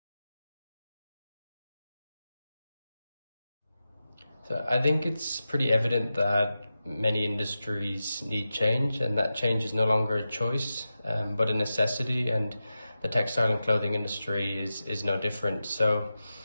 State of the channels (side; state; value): both; inverted; correlation -0.92